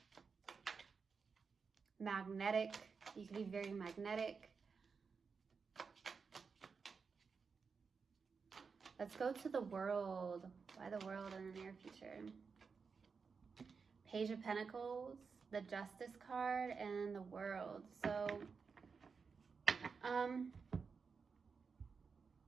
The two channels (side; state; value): left; quieter; 5.3 dB